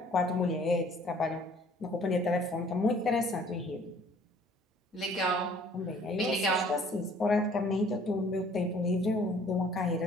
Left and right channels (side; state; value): both; normal; correlation 0.56